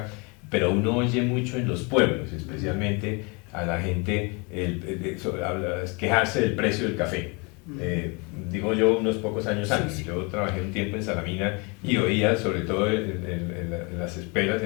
pero uno oye mucho en los pueblos, especialmente a la gente quejarse del precio del café. Digo yo unos pocos años antes, sí. Yo trabajé un tiempo en Salamina y oía, sobre todo en las esperas,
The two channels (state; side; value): quieter; right; 30.4 dB